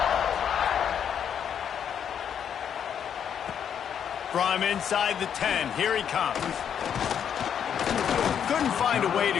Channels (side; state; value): right; quieter; 8.4 dB